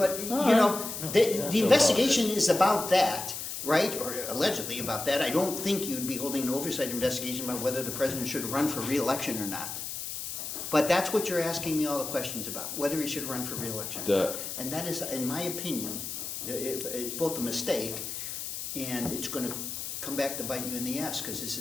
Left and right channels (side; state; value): left; noise; hiss, 6 dB below the sound